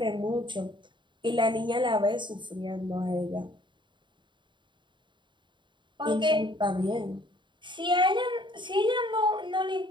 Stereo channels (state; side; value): late; left; 0.23 ms